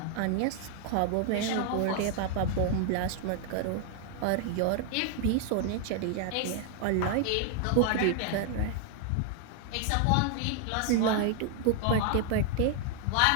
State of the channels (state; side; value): different; both; correlation 0.00